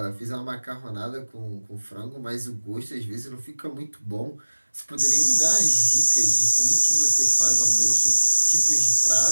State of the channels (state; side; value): inverted; both; correlation -1.00